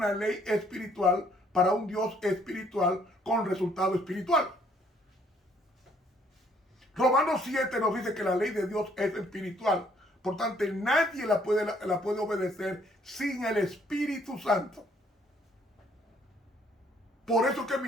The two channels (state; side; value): normal; both; correlation 0.65